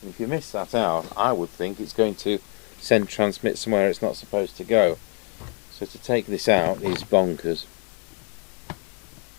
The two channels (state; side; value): quieter; right; 38.9 dB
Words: and if you miss that out, I would think it's going to send transmit somewhere it's not supposed to go. So to take this out is bonkers.